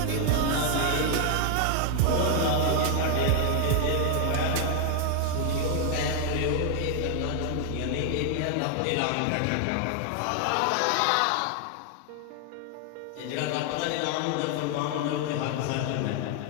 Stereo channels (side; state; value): both; different; correlation 0.00